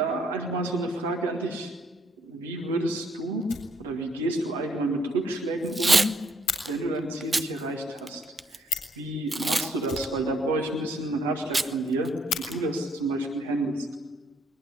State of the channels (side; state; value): both; normal; correlation 0.68